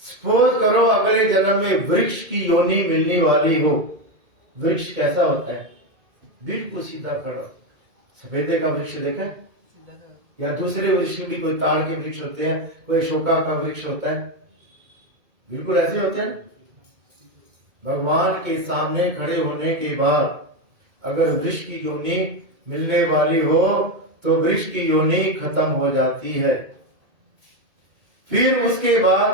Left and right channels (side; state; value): left; late; 2.2 ms